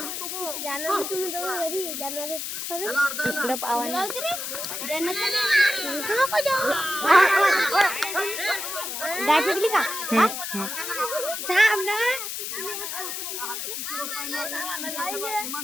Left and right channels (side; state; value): left; noise; hiss, 5 dB below the sound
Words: इकडं पावाने डाय फेकली का